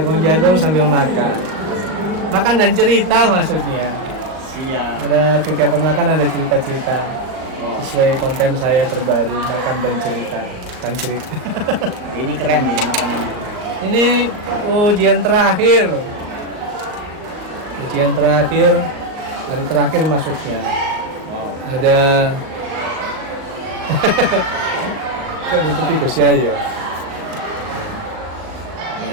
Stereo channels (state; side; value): late; left; 38 ms